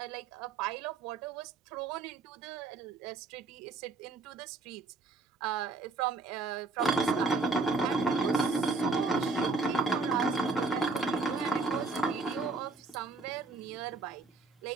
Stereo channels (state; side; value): quieter; left; 3.7 dB